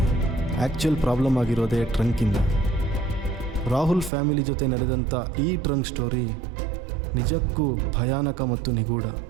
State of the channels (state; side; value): drops out; left; at 4.1 s